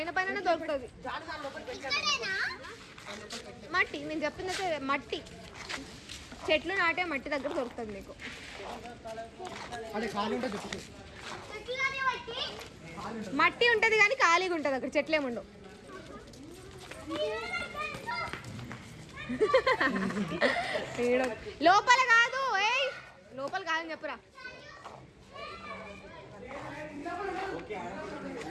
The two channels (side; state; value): both; identical; correlation 1.00